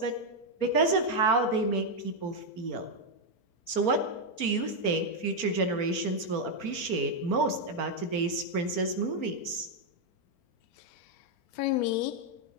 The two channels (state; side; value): late; right; 4.4 ms